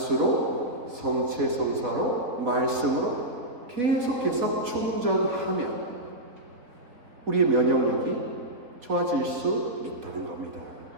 성체 성사로, 말씀으로 계속해서 충전하면 우리의 면역력이 좋아질 수 있다는 겁니다.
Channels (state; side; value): late; left; 3.8 ms